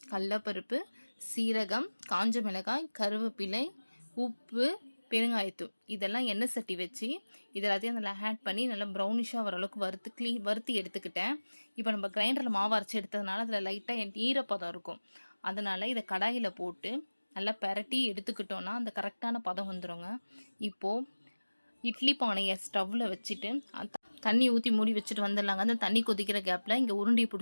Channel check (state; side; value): inverted; both; correlation -1.00